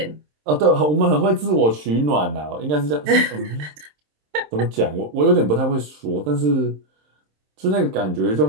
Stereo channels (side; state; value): left; late; 27 ms